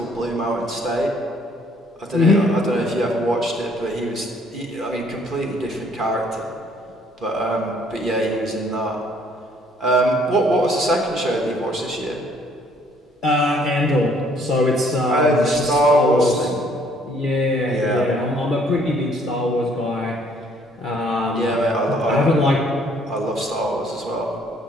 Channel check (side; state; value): both; normal; correlation 0.62